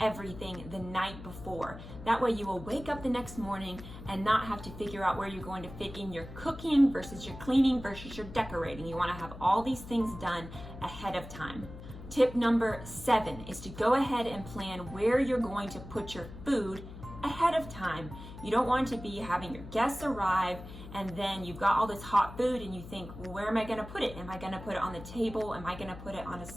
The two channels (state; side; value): noise; left; hum, 13 dB below the sound